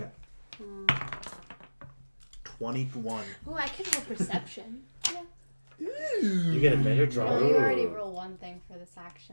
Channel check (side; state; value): both; inverted; correlation -1.00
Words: 21. Oh, I could roll perception. You get a better draw. Well, you already roll one thing for this